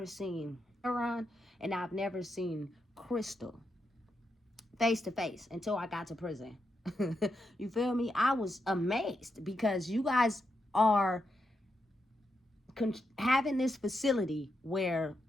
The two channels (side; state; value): both; normal; correlation 0.84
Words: seen heroin, and I've never seen crystal face to face until I got to prison. You feel me? I was amazed because you guys are having this facility where